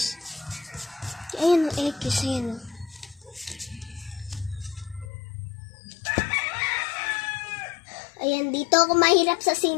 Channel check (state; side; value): drops out; right; at 5.1 s